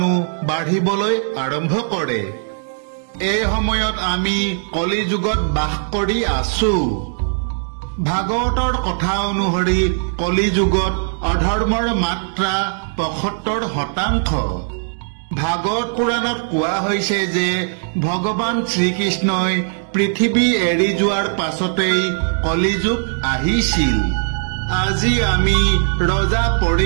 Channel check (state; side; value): silent; left; digital silence